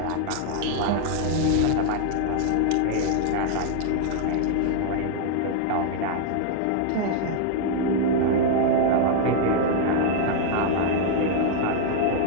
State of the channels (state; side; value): different; both; correlation -0.01